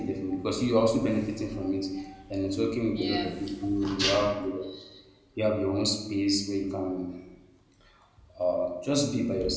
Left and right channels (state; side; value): identical; both; correlation 1.00